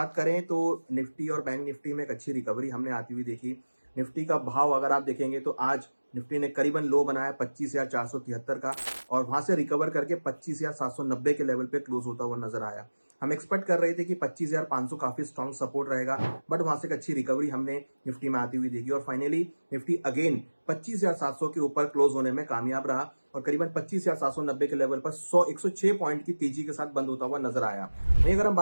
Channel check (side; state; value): both; inverted; correlation -1.00